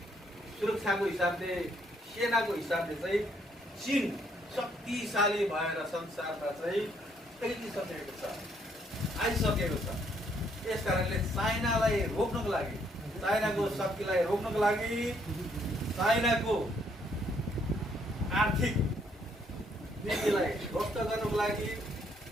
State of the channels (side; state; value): both; normal; correlation 0.69